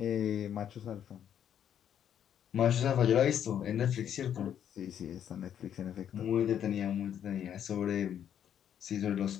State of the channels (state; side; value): quieter; right; 9.5 dB